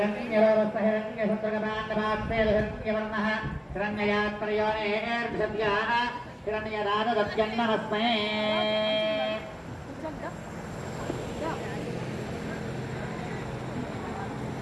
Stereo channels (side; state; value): both; identical; correlation 1.00